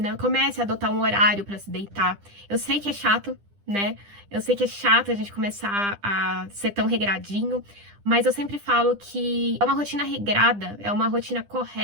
comece a adotar um horário para se deitar. Eu sei que é chato, né? Eu sei que é chato a gente começar a ser tão regradinho, mas eu sempre falo que é uma rotina regrada, é uma rotina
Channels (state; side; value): late; left; 10 ms